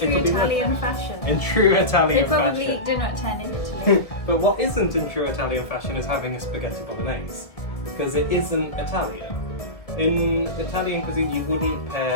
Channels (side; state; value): right; late; 1.7 ms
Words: Italian fashion. In true Italian They probably fashion. eat dinner at 10 in Italy. But what isn't in true Italian fashion is having a spaghetti bolognese, because it isn't Italian. In Italian cuisine, you wouldn't